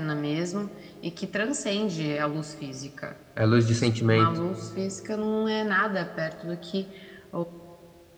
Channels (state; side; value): identical; both; correlation 1.00